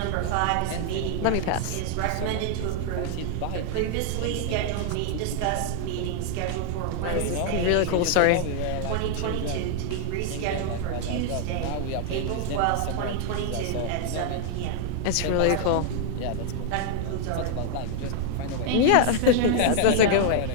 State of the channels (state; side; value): different; both; correlation 0.00